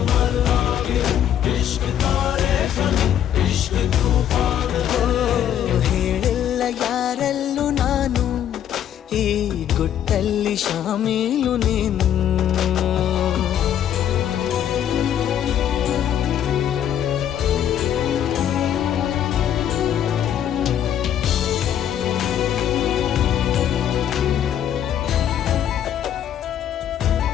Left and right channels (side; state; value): right; quieter; 10.1 dB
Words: मरना भी है, इश्क तारे ज़मीं, इश्क तूफान है। ಹೇಳಿಲ್ಲ ಯಾರಲ್ಲೂ ನಾನು ಈ ಗುಟ್ಟಲ್ಲಿ ಶಾಮೀಲು ನೀನು.